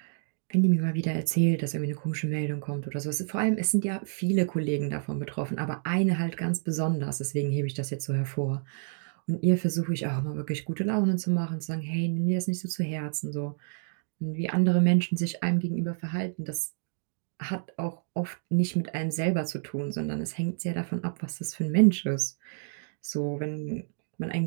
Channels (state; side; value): silent; left; digital silence